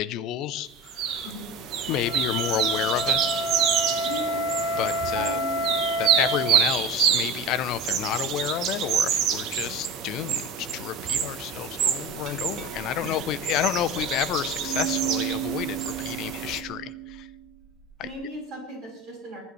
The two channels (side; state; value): both; normal; correlation 0.32